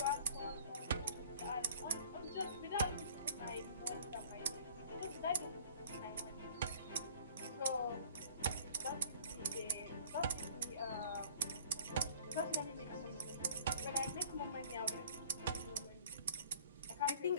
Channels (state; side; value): inverted; both; correlation -0.50